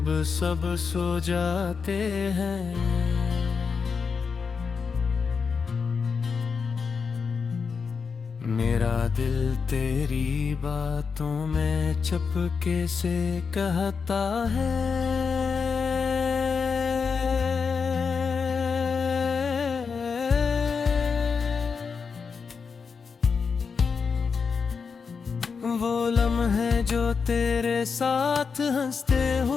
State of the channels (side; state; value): right; quieter; 5.5 dB